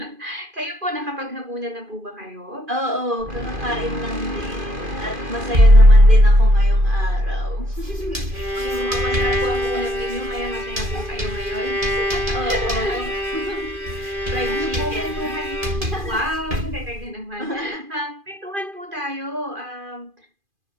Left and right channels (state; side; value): late; left; 2.5 ms